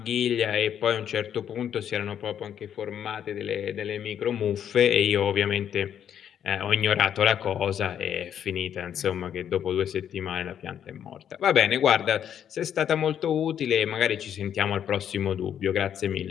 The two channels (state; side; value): quieter; right; 9.3 dB